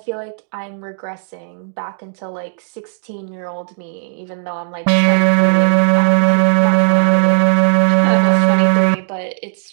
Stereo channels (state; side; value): silent; left; 61 dB below the other